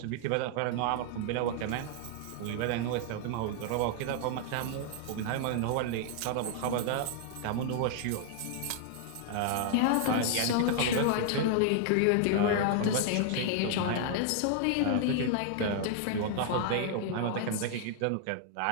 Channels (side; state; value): both; different; correlation 0.00